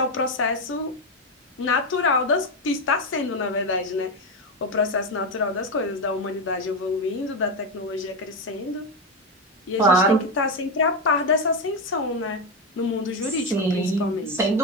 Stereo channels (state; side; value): normal; both; correlation 0.11